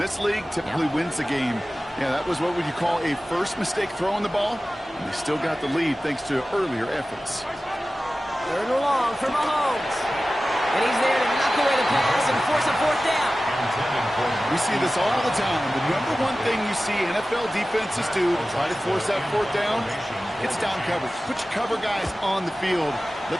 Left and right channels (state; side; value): normal; both; correlation 0.96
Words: league typically wins the game. Yeah, that was what would you call a first mistake throwing the ball. And they still got the lead thanks to earlier efforts. Third and long for Mahomes. And he's there to knock away the pass and force a fourth down. We see this all the time. The number one thing you see NFL defenses do to try to force that fourth down, it's down coverage. Put your cover guys on the field.